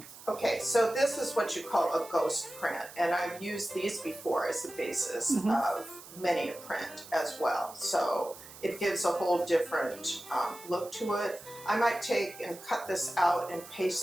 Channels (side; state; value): right; noise; hiss, 17 dB below the sound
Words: Okay, so this is what you call a ghost print, and I've used these before as the basis of many a print as well. So it gives a whole different look to it. I might take and cut this out and